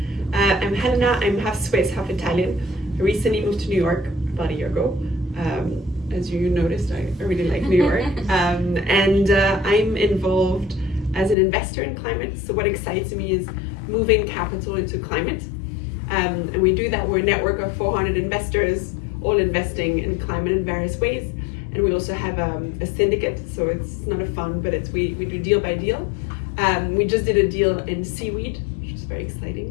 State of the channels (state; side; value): drops out; right; at 11.4 s